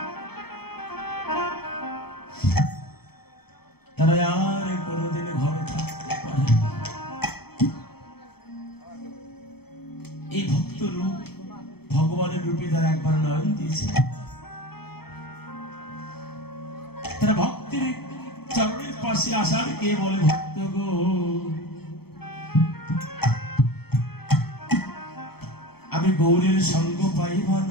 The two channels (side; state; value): right; late; 0.96 ms